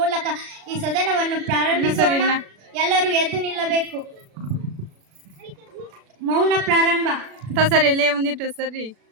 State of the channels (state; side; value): late; left; 36 ms